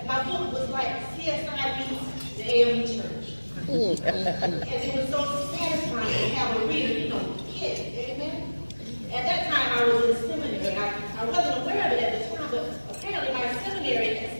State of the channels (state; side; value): inverted; both; correlation -1.00